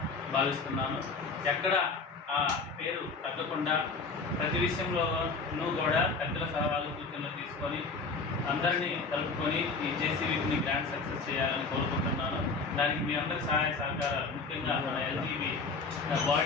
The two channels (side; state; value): right; quieter; 4.3 dB